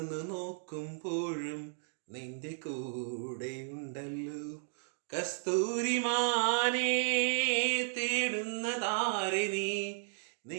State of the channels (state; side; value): silent; left; digital silence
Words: നോക്കുമ്പോഴും നിന്റെ കൂടെയുണ്ടല്ലോ കസ്തൂരിമാനേ തേടുന്നതാരെ നീ